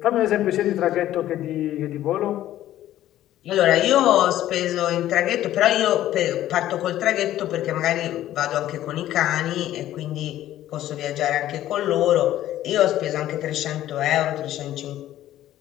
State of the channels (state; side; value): quieter; right; 13.3 dB